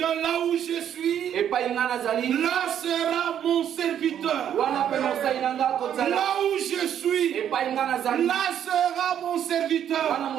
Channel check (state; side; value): quieter; left; 9.7 dB